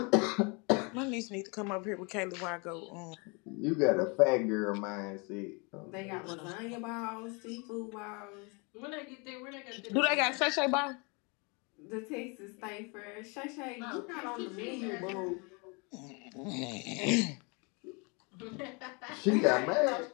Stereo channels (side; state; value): right; quieter; 31.3 dB